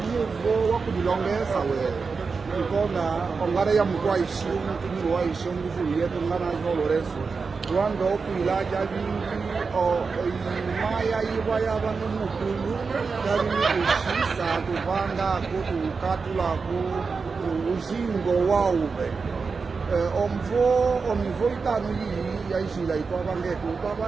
wakudilongesa we ikona ongara ya mkwaishi mkini waishi nguvu yetu ngana zoloreso wando kwila javingi imaya iwa yavano mukulu javini kushisa kuvanga kutukatulako uzingo wauve omivo itano iyi yaizila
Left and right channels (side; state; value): left; quieter; 4.8 dB